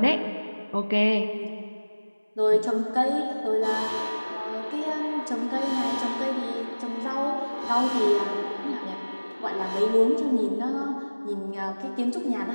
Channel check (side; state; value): both; inverted; correlation -1.00